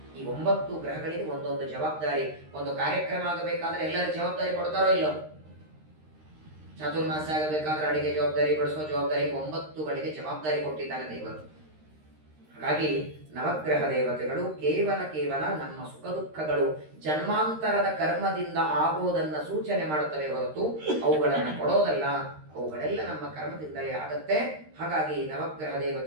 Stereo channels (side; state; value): left; late; 13 ms